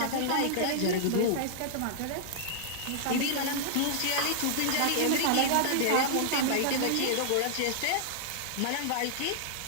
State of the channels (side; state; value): both; different; correlation -0.01